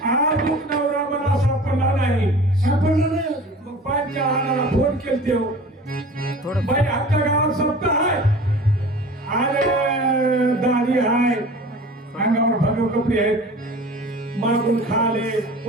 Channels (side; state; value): both; normal; correlation 0.41